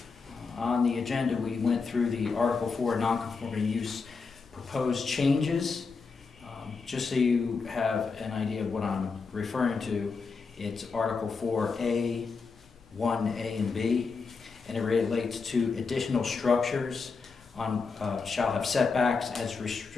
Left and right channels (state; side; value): quieter; right; 4.8 dB